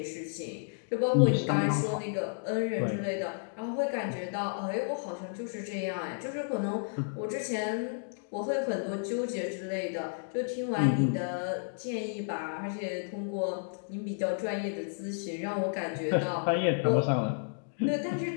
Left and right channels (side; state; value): right; silent; digital silence